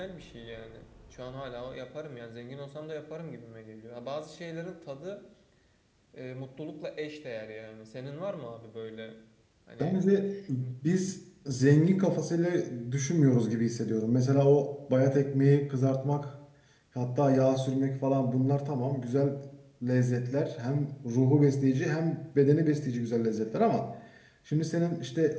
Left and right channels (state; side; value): identical; both; correlation 1.00